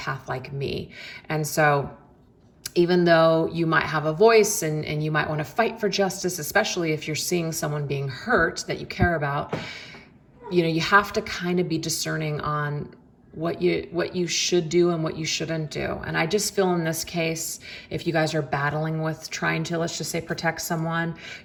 like me. And so even though you might have a voice and you might want to fight for justice, especially if you're seeing someone being hurt that you care about, you know, you have to kind of be discerning on what you should do and what you shouldn't do. And I just feel in this case, if you guys are battling with trying to, let's just say, protect someone,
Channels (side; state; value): both; identical; correlation 1.00